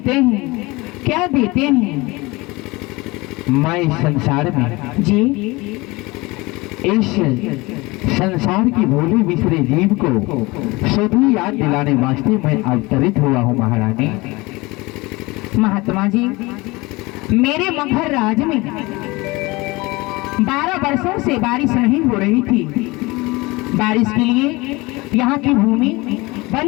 हैं, क्या देते हैं? मैं इस संसार में जी, इस संसार की भोले बिसरे जीव को सभी याद दिलाने वास्ते मैं अवतरित हुआ हूँ महारानी। महात्मा जी, मेरे मगहर राज में 12 वर्षों से बारिश नहीं हो रही थी। बारिश के लिए यहाँ की भूमि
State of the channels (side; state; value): right; quieter; 23.0 dB